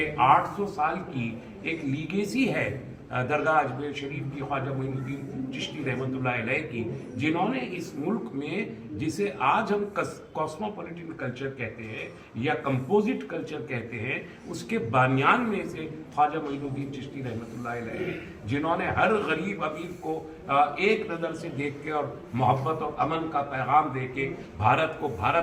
800 साल की एक लीगेसी है दरगाह अजमेर शरीफ की, ख्वाजा मोइनुद्दीन चिश्ती रहमतुल्लाह अलैह की, जिन्होंने इस मुल्क में, जिसे आज हम कॉस्मोपॉलिटन कल्चर कहते हैं या कंपोजिट कल्चर कहते हैं, उसके बानियान में से ख्वाजा मोइनुद्दीन चिश्ती रहमतुल्लाह अलैह, जिन्होंने हर गरीब अमीर को एक नज़र से देख के और मोहब्बत और अमन का पैगाम दे के भारत को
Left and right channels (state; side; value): identical; both; correlation 1.00